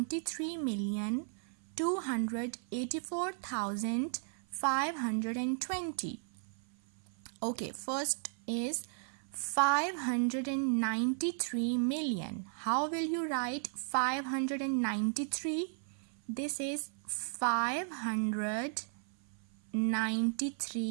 284,520. Okay, first is 593 million. How will you write 593? This is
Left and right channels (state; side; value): silent; left; 54 dB below the other